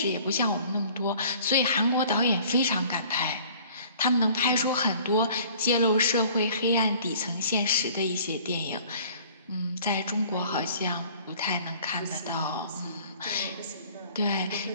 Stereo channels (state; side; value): inverted; both; correlation -0.51